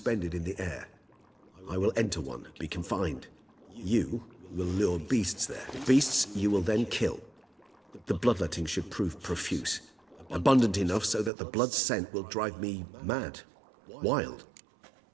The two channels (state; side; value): drops out; left; at 11.3 s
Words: in the air. I will enter one, be confined. You will lure beasts there. Beasts you will then kill. The bloodletting should prove profuse. Abundant enough so that the blood scent will drive me mad. Wild.